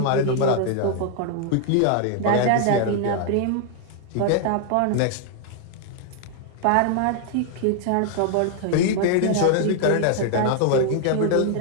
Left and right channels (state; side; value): different; both; correlation 0.00